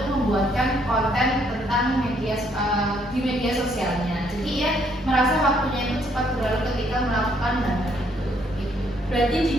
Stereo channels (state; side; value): normal; both; correlation 0.69